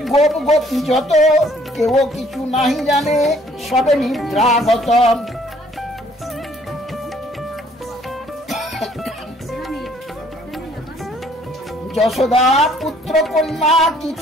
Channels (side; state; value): both; normal; correlation 0.61